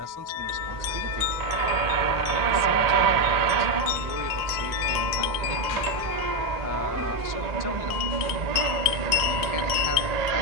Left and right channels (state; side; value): late; left; 1.0 ms